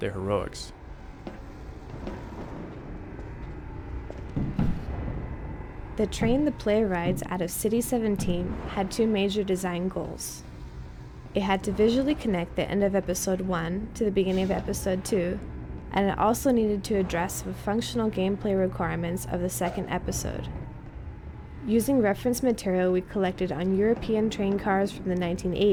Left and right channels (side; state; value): both; identical; correlation 1.00